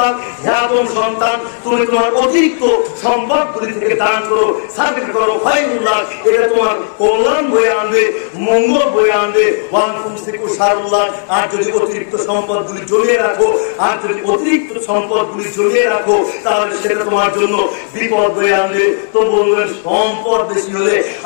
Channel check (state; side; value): silent; right; digital silence